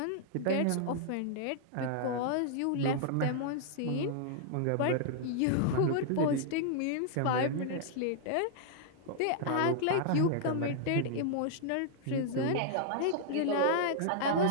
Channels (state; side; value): different; both; correlation -0.01